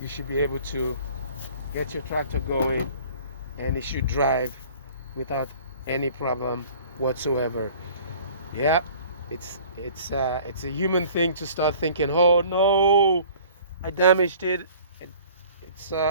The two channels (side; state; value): both; inverted; correlation -0.49